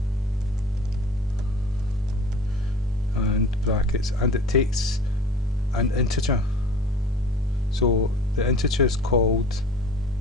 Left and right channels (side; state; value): both; normal; correlation 0.44